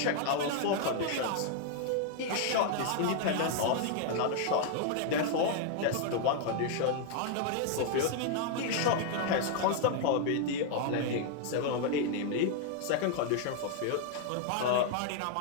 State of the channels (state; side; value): different; both; correlation 0.00